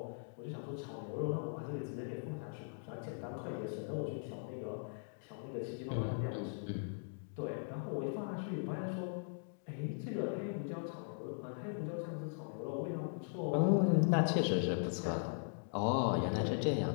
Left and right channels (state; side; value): silent; right; digital silence